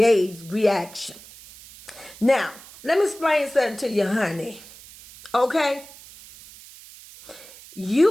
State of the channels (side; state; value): right; noise; hiss, 19 dB below the sound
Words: reaction. Now, let me explain something to you, honey. Okay?